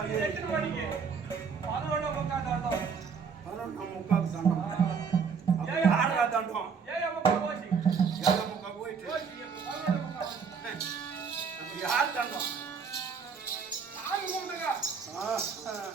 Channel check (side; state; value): left; quieter; 6.0 dB